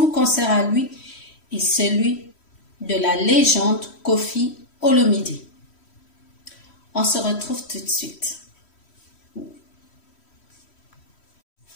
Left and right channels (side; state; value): right; late; 3.1 ms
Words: concert à lui et celui de la légende Koffi Olomide. On se retrouve tout de suite.